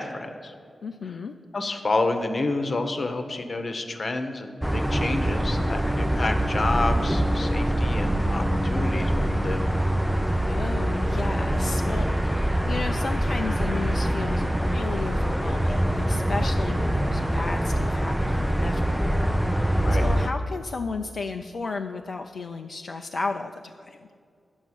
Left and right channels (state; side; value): normal; both; correlation 0.96